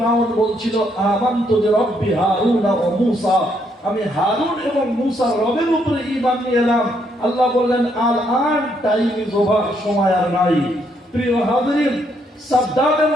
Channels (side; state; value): both; normal; correlation 0.73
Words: বলছিল আমানতু বিরাব্বি হারুন ওয়া মূসা, আমি হারুন এবং মূসার রবের উপরে ঈমান নিয়ে এলাম। আল্লাহ বললেন আল আন টাইম ইজ ওভার, সময় আর নাই। প্রিয় হাজরিন, সাদ্দামের